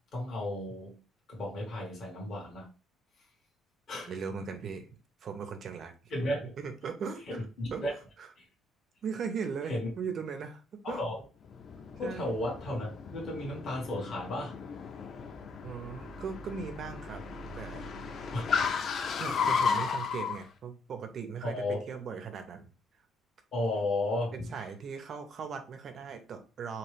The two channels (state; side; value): normal; both; correlation 0.70